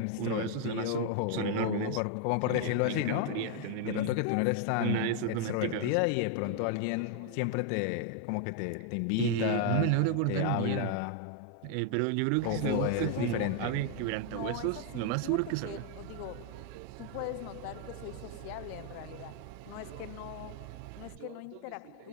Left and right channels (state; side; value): different; both; correlation 0.00